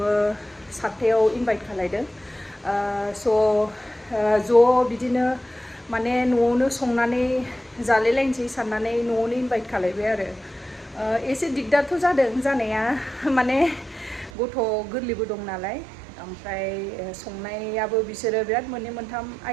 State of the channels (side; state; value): left; drops out; at 14.3 s